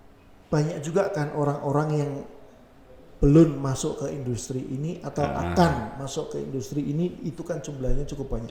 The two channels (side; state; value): both; identical; correlation 1.00